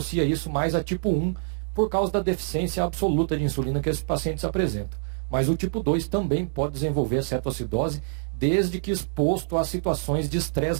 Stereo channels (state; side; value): silent; left; digital silence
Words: isso mais a tipo 1 por causa da deficiência absoluta de insulina que esses pacientes apresentam. Mas o tipo 2 também pode desenvolver cetoacidose, desde que exposto a situações de